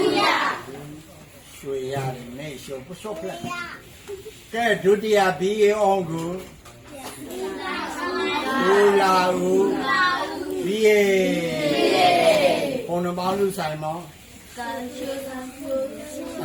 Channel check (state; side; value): identical; both; correlation 1.00